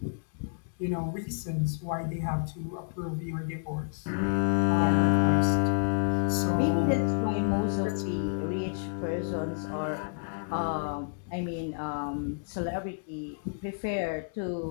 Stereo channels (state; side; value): silent; right; digital silence